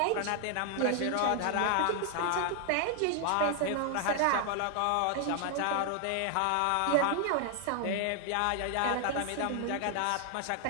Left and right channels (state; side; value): different; both; correlation 0.00